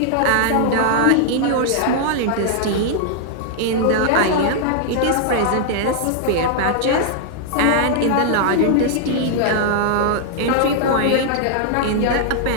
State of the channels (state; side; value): different; both; correlation -0.01